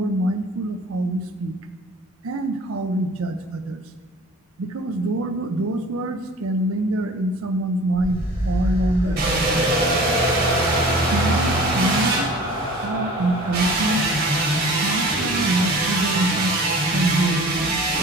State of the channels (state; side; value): normal; both; correlation 0.44